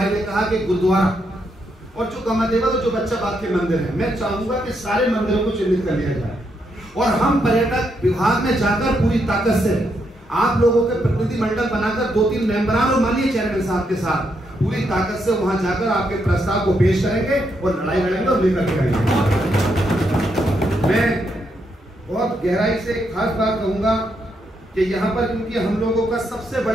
ने कहा कि गुरुद्वारा, और जो कमादेवा, तो जो बच्चा बाग के मंदिर है, मैं चाहूंगा कि सारे मंदिरों को चिन्हित कर लिया जाए और हम पर्यटक विभाग में जाकर पूरी ताकत से आप लोगों के प्रतिनिधि मंडल बनाकर 2-3 मेंबरान और माननीय चेयरमैन साहब के साथ पूरी ताकत से वहां जाकर आपके प्रस्ताव को पेश करेंगे और लड़ाई लड़ेंगे और लेकर के आएंगे। मैं बहुत गहराई से खास बात कहूंगा कि यहाँ पर, क्योंकि हम लोगों का सबसे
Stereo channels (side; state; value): both; normal; correlation 0.79